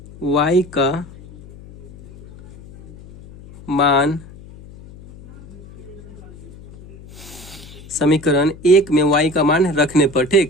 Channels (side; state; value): left; noise; hum, 19 dB below the sound